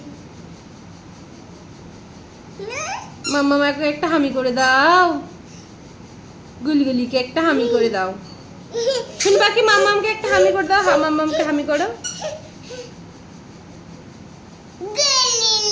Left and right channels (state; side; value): identical; both; correlation 1.00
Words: মামাকে একটা হামি করে দাও, গুলগুলিকে একটা হামি করে দাও। শুনি বাকি মামামকে একটা হামি করে দাও। মামামকে হামি করো।